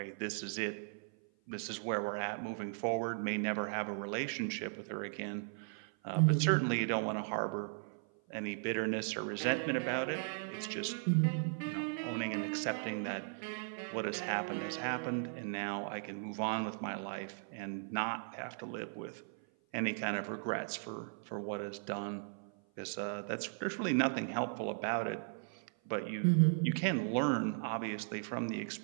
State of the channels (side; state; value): left; silent; 53 dB below the other